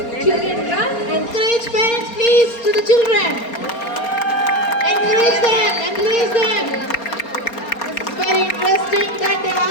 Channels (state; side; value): late; right; 4.3 ms